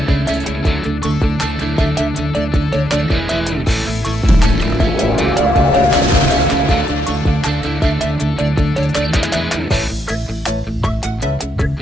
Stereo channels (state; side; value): normal; both; correlation 0.80